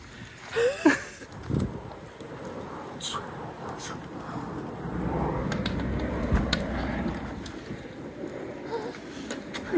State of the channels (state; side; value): identical; both; correlation 1.00